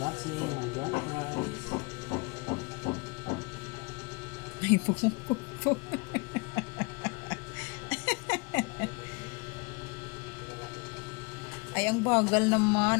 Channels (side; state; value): right; quieter; 29.3 dB